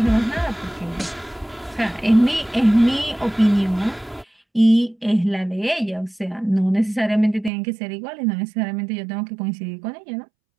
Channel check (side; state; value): left; drops out; at 7.5 s